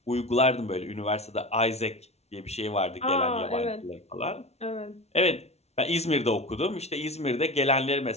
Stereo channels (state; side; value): late; right; 0.31 ms